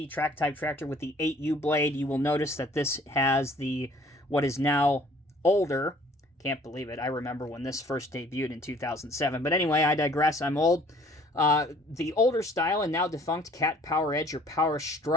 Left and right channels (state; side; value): normal; both; correlation 0.55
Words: track type tractor with the 8U blade. You will notice that this has the what is now older. Can't believe it. I remember when this first debuted in 2007. But anyway, I digress. I'm old. The older style and now defunct CAT Power Edge or Power